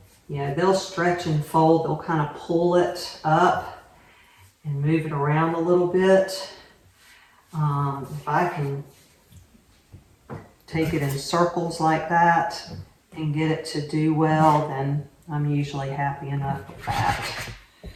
they'll stretch and fold. They'll kind of pull it up and move it around a little bit. If I can take it in circles like that and get it to do well, then I'm usually happy enough with that.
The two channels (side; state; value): both; identical; correlation 1.00